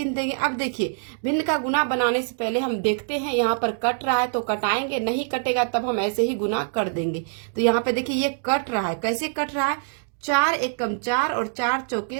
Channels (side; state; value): left; silent; digital silence